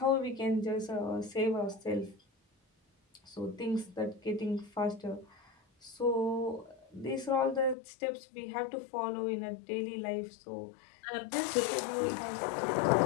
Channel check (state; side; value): drops out; right; at 7.8 s